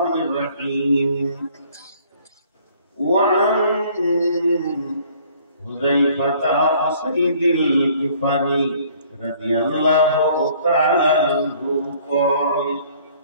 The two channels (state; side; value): inverted; both; correlation -0.57